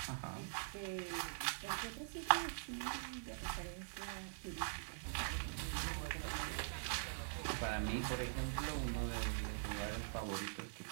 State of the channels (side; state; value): left; silent; digital silence